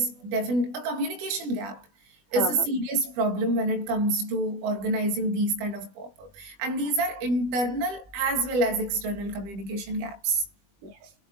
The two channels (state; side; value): late; left; 20 ms